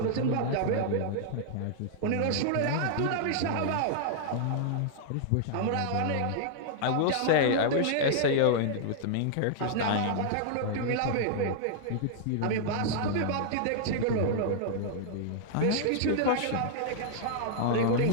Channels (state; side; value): different; both; correlation -0.01